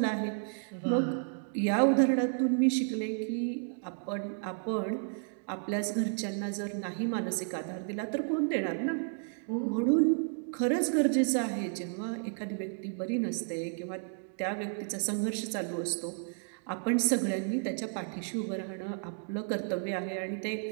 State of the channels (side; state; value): left; silent; 56 dB below the other